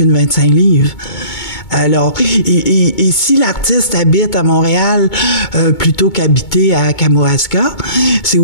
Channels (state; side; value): late; right; 2.2 ms